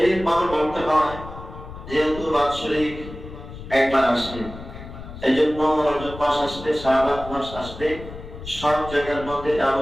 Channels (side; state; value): left; noise; rumble, 13 dB below the sound